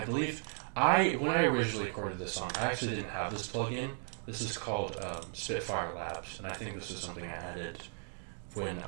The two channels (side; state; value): left; silent; 54 dB below the other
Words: believe when I originally recorded this song, I actually didn't have this plugin. This is called Spitfire Labs, and I think this is something I added when